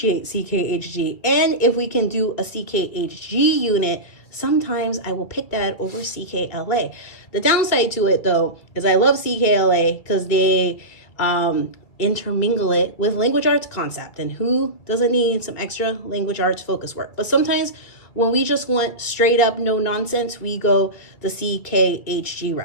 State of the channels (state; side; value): late; right; 2.3 ms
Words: CKHG. And if we can do a CKHG unit, sometimes I will pick that over CKLA. The downside to it, though, is I love CKLA because they intermingle it with language arts concept, and who doesn't need some extra language arts focus work? But sometimes when we just want straight up no nonsense, we go the CKHG